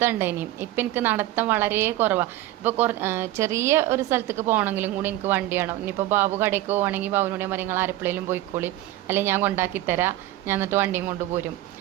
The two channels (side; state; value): left; quieter; 15.2 dB